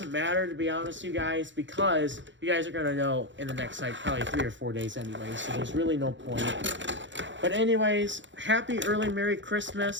matter, to be honest with you guys, because you guys are going to know in the next, like, probably 3 or 4 days anyway, so there's really no point. But anyways, happy early Merry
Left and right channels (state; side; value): late; left; 0.54 ms